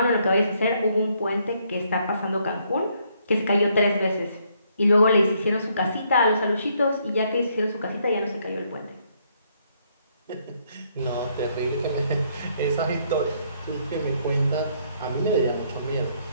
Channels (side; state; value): both; inverted; correlation -0.70